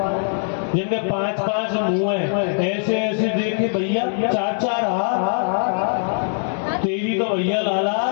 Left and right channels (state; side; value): silent; right; digital silence